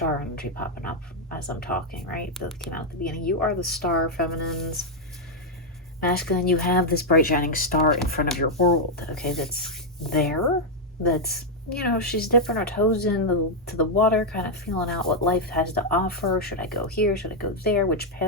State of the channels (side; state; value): both; normal; correlation -0.01